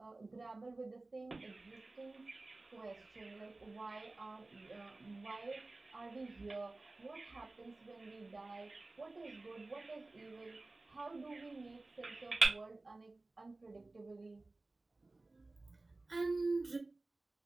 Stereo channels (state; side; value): quieter; left; 3.1 dB